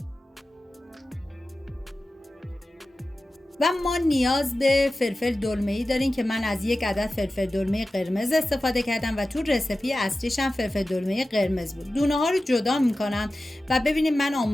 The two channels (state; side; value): normal; both; correlation 0.95